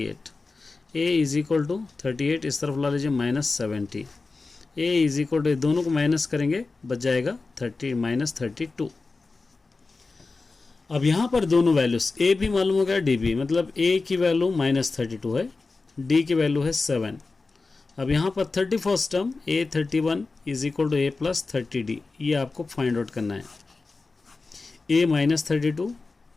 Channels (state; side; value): quieter; right; 3.8 dB